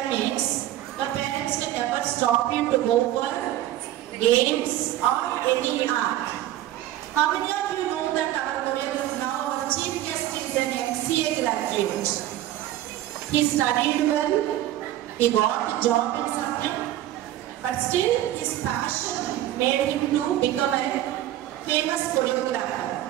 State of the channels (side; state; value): left; quieter; 13.6 dB